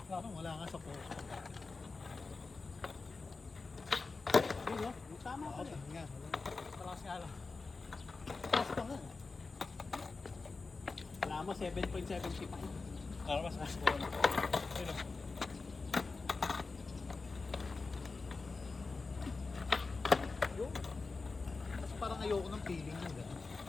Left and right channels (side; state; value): right; quieter; 4.0 dB